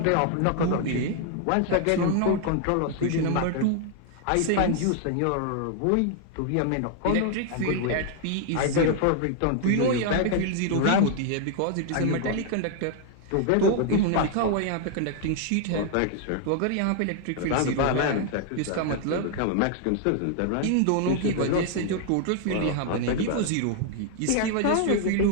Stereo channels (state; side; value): different; both; correlation 0.00